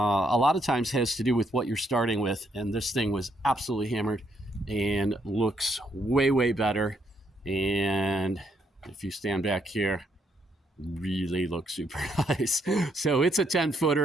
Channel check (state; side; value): normal; both; correlation 0.74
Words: lot of times has to do with what you're starting with, and this thing was absolutely hammered and looks way better. And if you stand back here, really looks super nice. So it's a